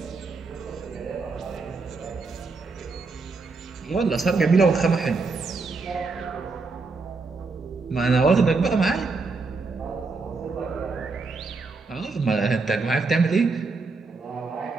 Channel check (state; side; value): quieter; left; 4.1 dB